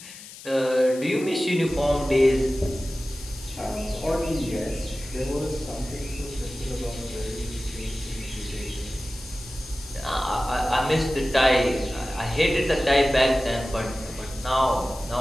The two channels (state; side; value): noise; left; hiss, 15 dB below the sound